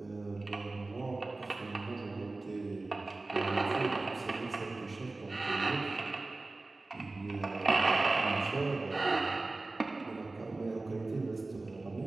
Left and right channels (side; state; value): left; quieter; 3.2 dB